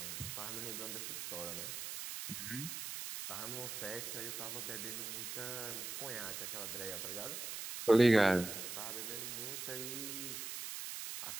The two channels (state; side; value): noise; right; hiss, 5 dB below the sound